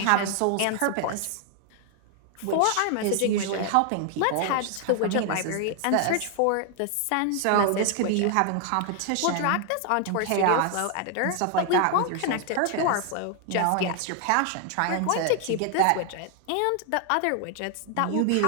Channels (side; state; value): both; different; correlation 0.00